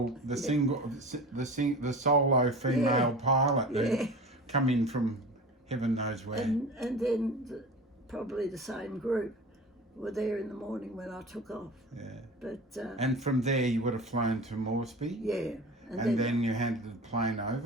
the solo female pilot who come in from heaven knows where. And then probably the same group were there in the morning when I took off. Yeah. But and from there you would have flown to Moresby. Yeah. And then you handed the plane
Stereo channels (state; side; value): normal; both; correlation 0.35